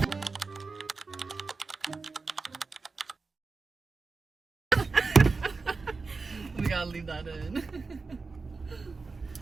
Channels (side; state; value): left; quieter; 4.2 dB